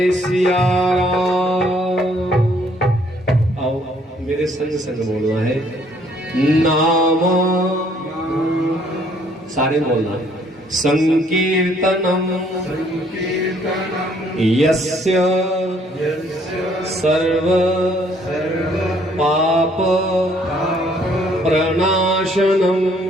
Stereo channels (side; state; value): both; normal; correlation 0.63